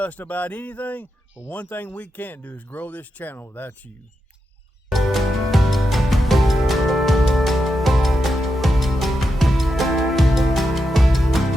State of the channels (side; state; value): both; normal; correlation 0.87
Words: about anything, but one thing we can't do is grow this channel without you.